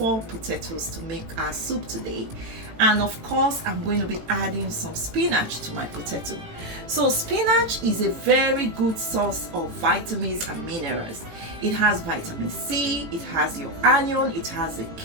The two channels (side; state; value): left; late; 18 ms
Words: potatoes to make our soup today. And of course, I'm going to be adding some spinach to my potato. So spinach is a very good source of vitamins and minerals. It has vitamin C, it has your iron, it has a